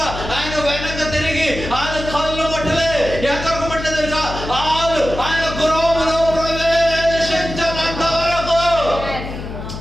ఆయన వెనక తిరిగి ఆయన కళ్ళు మట్టలే ఎక్కడికి మట్టలే తెలుసా? ఆయన గృహంలో ప్రవేశించినంత వరకు.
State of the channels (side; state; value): left; noise; hum, 9 dB below the sound